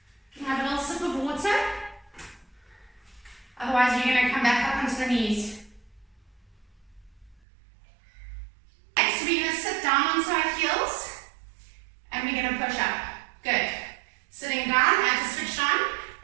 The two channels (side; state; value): left; drops out; at 7.4 s